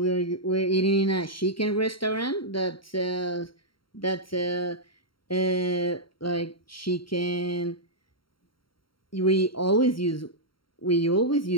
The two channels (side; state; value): right; late; 0.73 ms